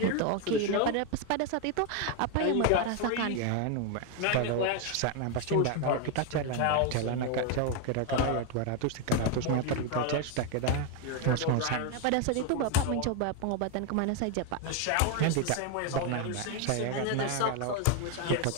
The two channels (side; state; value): both; different; correlation 0.01